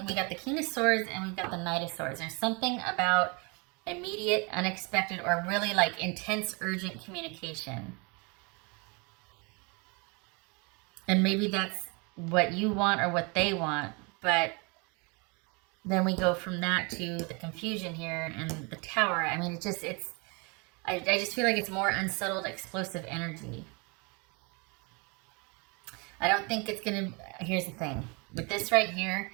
we got the King of Swords and we've got the Knight of Swords. There's something about immediate, unexpected, or really like intense, urgent communication. And maybe that's what you want or what they want, but then we go from that to the confusion here and the Tower. I mean, I just feel like it's more unsettled, explosive energy. I don't think it's going to, here's the thing. With this right here,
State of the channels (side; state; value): left; quieter; 30.6 dB